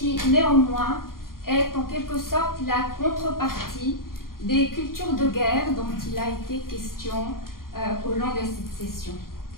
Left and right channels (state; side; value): late; right; 0.91 ms